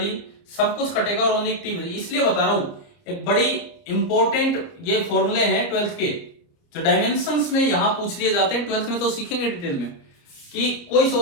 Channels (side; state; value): right; late; 30 ms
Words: सब कुछ कटेगा और ओनली टी। इसलिए बता रहा हूं, एक बड़ी इंपॉर्टेंट ये फॉर्मूले हैं 12th के, जो डायमेंशंस में यहां पूछ लिए जाते हैं। 12th में तो सीखेंगे डिटेल में कि कोई